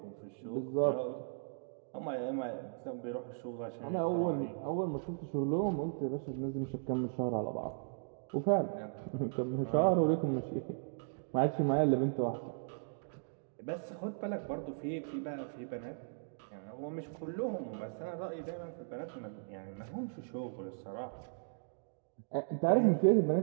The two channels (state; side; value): silent; left; digital silence